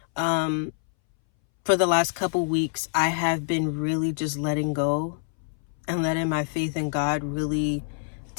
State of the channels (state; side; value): silent; right; 61 dB below the other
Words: For the last couple weeks, I have been really just letting go and letting my faith in God really